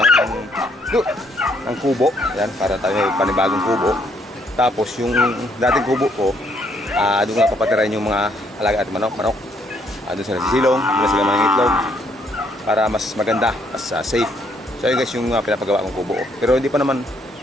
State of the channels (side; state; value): both; normal; correlation 0.70